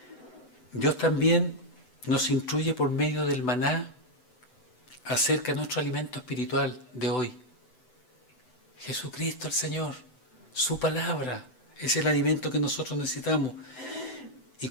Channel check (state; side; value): late; right; 7.9 ms